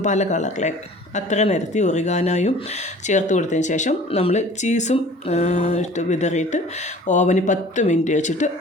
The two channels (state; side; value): normal; both; correlation 0.47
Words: പല കളറിലേക്ക് അത്ര നിരത്തി ഒറിഗാനോയും ചേർത്ത് കൊടുത്തതിന് ശേഷം നമ്മൾ ചീസും ഇട്ട് വിതറിയിട്ട് ഓവന് 10 മിനിറ്റ് വെച്ചിട്ട്